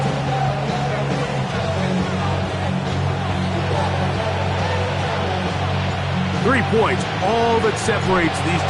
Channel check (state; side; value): identical; both; correlation 1.00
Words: Points, all that separates these